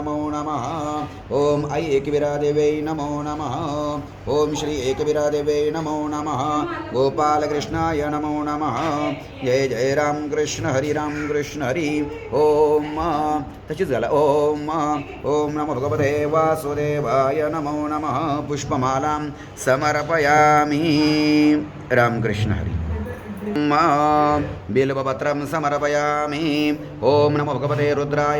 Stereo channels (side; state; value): both; identical; correlation 1.00